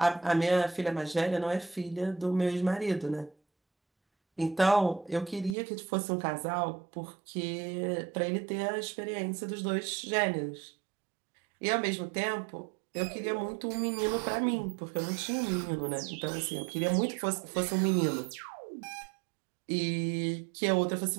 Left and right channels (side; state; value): left; drops out; at 5.6 s